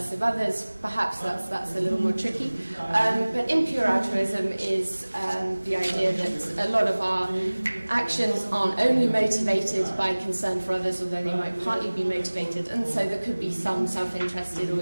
of others, perhaps that's a little more tricky. But impure altruism is the idea that a lot of our actions aren't only motivated by concern for others, although they might partly be motivated, and so there could be some self-interested or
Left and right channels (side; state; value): both; inverted; correlation -1.00